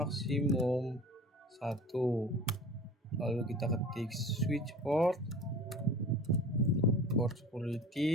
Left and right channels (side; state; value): both; normal; correlation 0.41